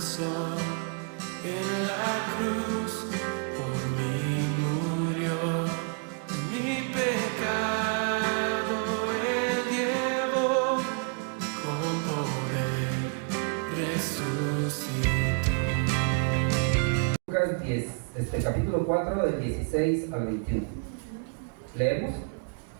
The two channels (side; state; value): left; quieter; 39.1 dB